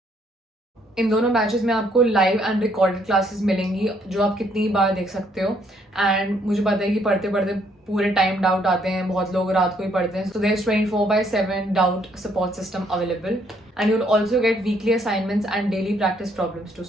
इन दोनों बैचेस में आपको लाइव एंड रिकॉर्डेड क्लासेस मिलेंगी जो आप कितनी बार देख सकते हो. एंड मुझे पता है कि पढ़ते पढ़ते पूरे टाइम डाउट आते हैं, बहुत लोग रात को ही पढ़ते हैं. So there is 24/7 doubt support system available. And you will also get weekly assignments and daily practice problems to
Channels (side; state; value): both; normal; correlation 0.68